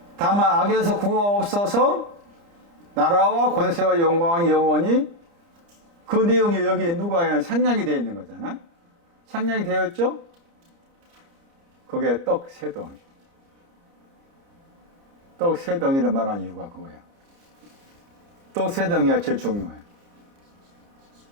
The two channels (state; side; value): late; left; 30 ms